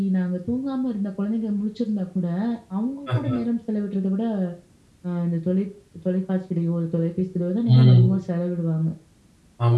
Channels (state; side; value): identical; both; correlation 1.00